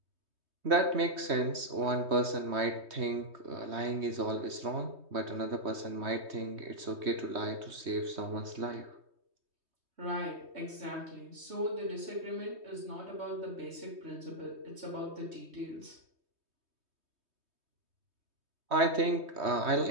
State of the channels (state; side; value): late; left; 3.2 ms